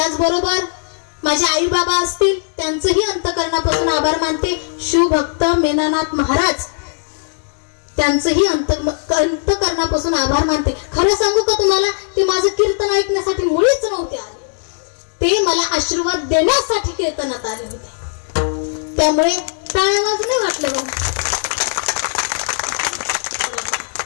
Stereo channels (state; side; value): silent; right; digital silence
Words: माझे आई बाबा असतील, त्यांचंही अंतकरणापासून आभार मानते. शिवभक्त मेनानाथ महाराज, त्यांचंही अंतकरणापासून आभार मानते. खरं सांगू का तुम्हाला, ते माझं कीर्तन ऐकण्यासाठी मुळीच नव्हते आले. ते मला आशीर्वाद देण्यासाठी कीर्तनात आले होते. त्यामुळे टाळ्या वाजणे वाटलं बघ.